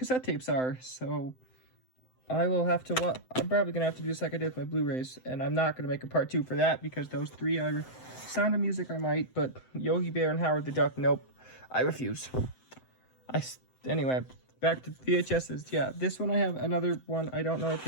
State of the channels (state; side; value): late; right; 7.8 ms